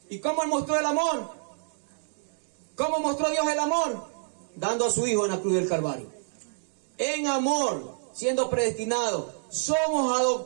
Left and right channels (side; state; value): left; silent; digital silence